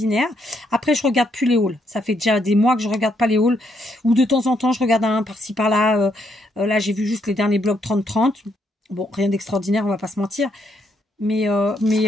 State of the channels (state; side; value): normal; both; correlation 0.75